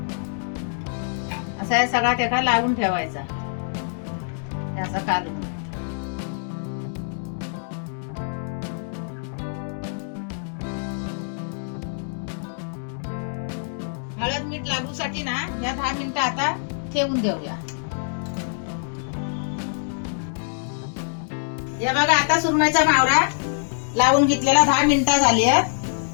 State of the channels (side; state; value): right; silent; digital silence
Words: असा सगळा त्याला लावून ठेवायचा, असा काढून। हळद मीठ लागूसाठी ना या 10 मिनिटं आता ठेवून देऊया। या बघा, आता सुरमईचा मावरा लावून घेतलेला 10 मिनिटं झाली